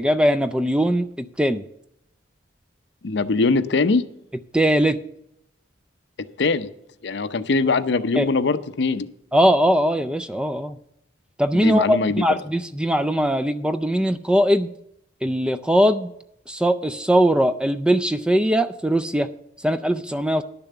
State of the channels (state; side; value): normal; both; correlation 0.74